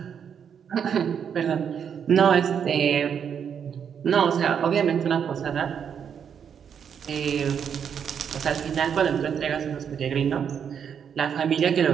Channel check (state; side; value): quieter; left; 7.7 dB